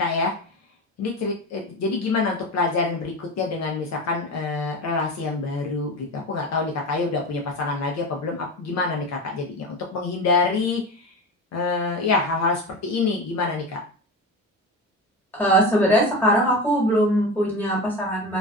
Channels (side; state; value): both; normal; correlation 0.25